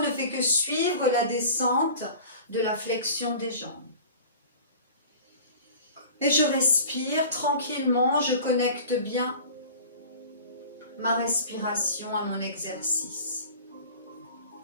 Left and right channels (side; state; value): both; inverted; correlation -0.41